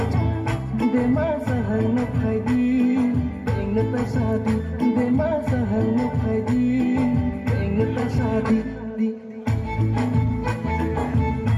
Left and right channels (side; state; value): both; identical; correlation 1.00